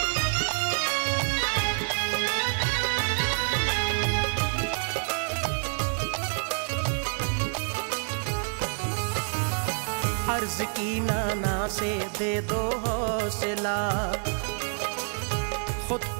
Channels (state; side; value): silent; left; 60 dB below the other